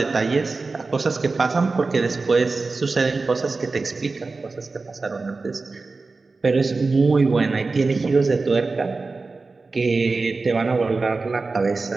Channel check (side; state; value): left; quieter; 3.9 dB